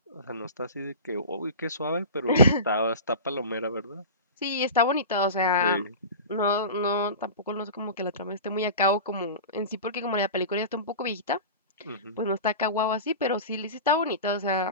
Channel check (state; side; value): inverted; both; correlation -0.31